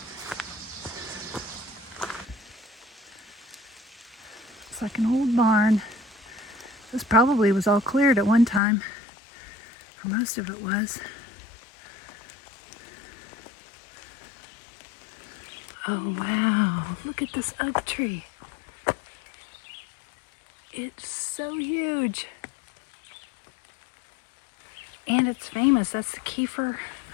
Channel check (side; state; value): right; drops out; at 8.6 s